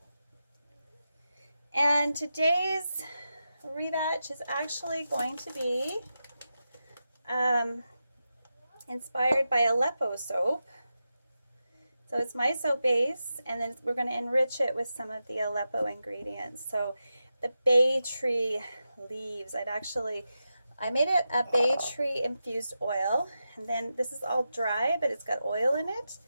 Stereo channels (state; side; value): inverted; both; correlation -0.90